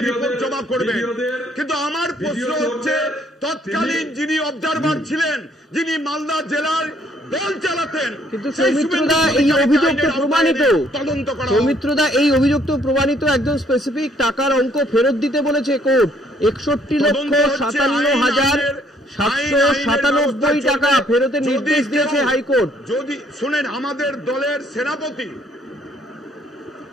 রিপোর্ট জমা করবে। কিন্তু আমার প্রশ্ন হচ্ছে, তৎকালীন যিনি অবজারভার ছিলেন, যিনি মালদা জেলার দল চালাতেন, কিন্তু সৌমিত্রদা এই অভিযোগ তো প্রমাণিত, সৌমিত্রদা এই অভিযোগ তো প্রমাণিত, একজন স্পেসিফিক টাকার অঙ্ক ফেরত দিতে বলেছে কোর্ট, 61,57,797 টাকা ফেরতের নির্দেশ দিয়েছে হাইকোর্ট। যদি শুনেন, আমাদের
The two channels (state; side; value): normal; both; correlation 0.65